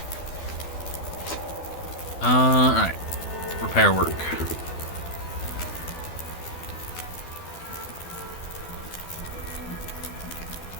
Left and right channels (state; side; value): late; right; 12 ms